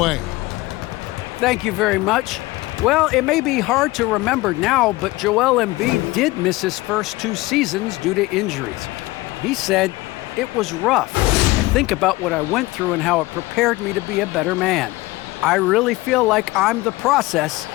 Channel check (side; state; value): right; quieter; 20.2 dB